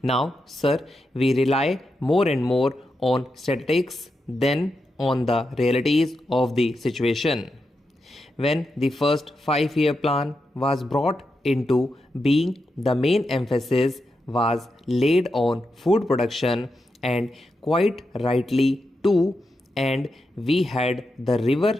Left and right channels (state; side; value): normal; both; correlation 0.87